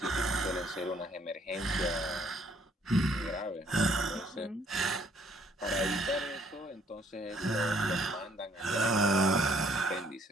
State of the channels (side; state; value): both; normal; correlation 0.64